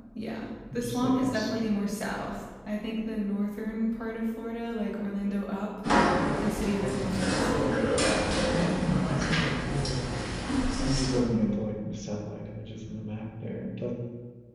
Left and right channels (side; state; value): both; identical; correlation 1.00